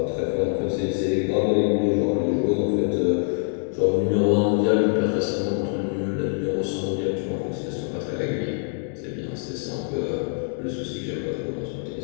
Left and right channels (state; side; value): silent; right; 59 dB below the other